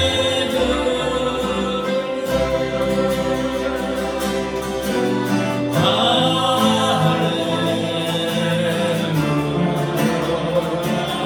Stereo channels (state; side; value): identical; both; correlation 1.00